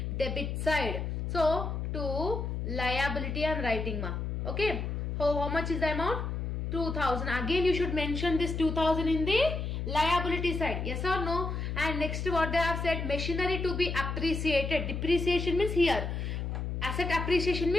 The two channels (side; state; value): left; noise; hum, 3 dB below the sound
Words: debit side. So to liability I am writing ma. Okay. How much is the amount? 2,000. Again you should mention this 2,000 in the liability side. Yes or no? And next what they have said, machinery to be appreciated. Depreciation means here. Asset appreciation